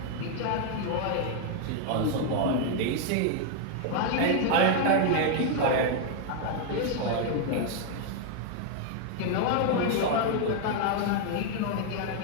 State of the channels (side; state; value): both; different; correlation 0.00